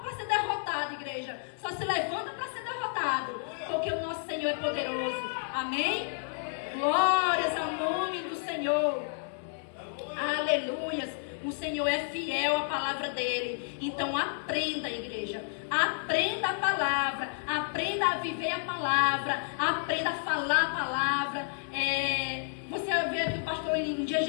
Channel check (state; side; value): silent; right; digital silence